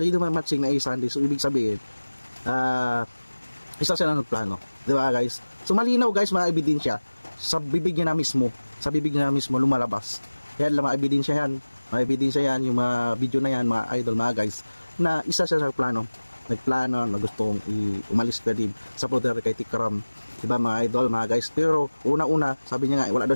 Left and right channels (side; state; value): both; inverted; correlation -1.00